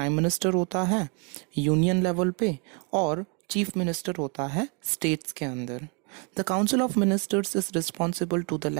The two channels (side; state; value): left; quieter; 35.2 dB